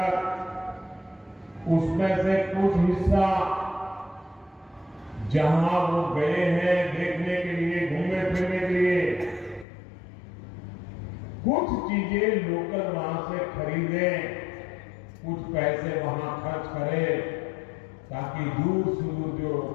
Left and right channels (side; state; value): right; drops out; at 9.7 s